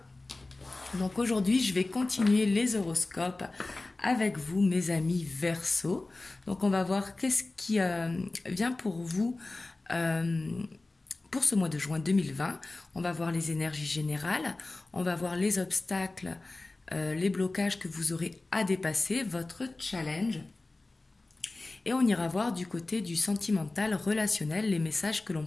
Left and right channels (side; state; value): right; quieter; 3.1 dB